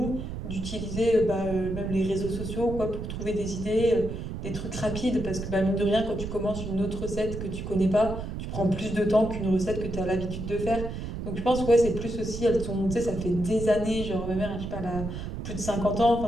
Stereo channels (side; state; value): right; noise; rumble, 6 dB below the sound